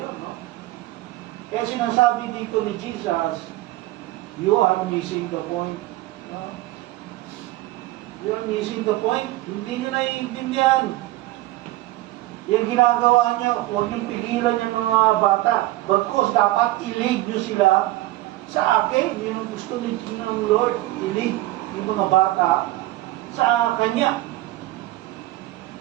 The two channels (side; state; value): left; quieter; 17.4 dB